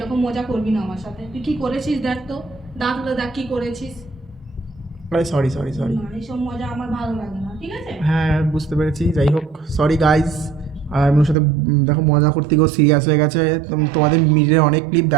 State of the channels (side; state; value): left; drops out; at 11.4 s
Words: মজা করবি না আমার সাথে। তুই কি করেছিস দেখ তো, দাঁতগুলো দেখ কি করেছিস। আরে সরি সরি সরি। না, এইসব মজা আমার ভালো লাগে না, ঠিক আছে? হ্যাঁ বুঝতে পেরেছি, যাই হোক সরি গাইস। আর আমি ওর সাথে দেখো মজা করতে গিয়েও সিরিয়াস হয়ে গেছে। তোমাদের মিডিয়ার অনেক ক্লিপ